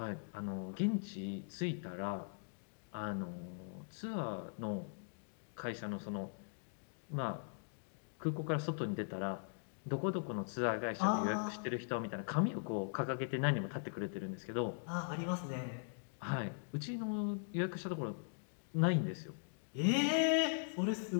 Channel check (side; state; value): right; silent; digital silence